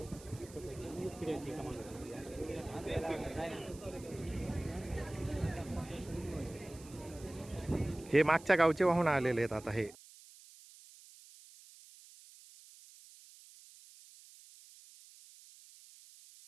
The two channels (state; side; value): noise; right; hiss, 20 dB below the sound